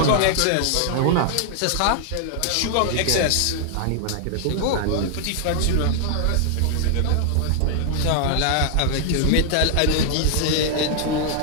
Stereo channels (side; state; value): both; different; correlation -0.01